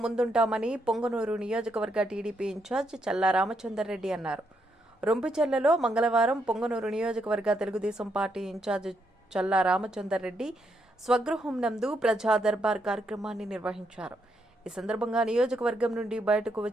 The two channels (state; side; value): normal; both; correlation 0.78